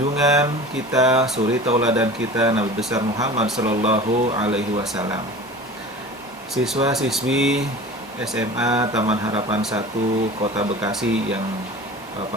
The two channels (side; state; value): both; normal; correlation 0.38